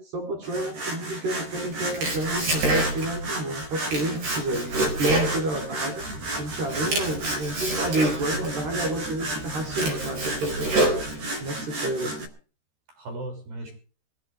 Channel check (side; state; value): left; late; 13 ms